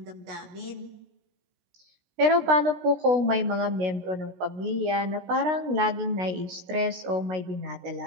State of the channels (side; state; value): left; late; 16 ms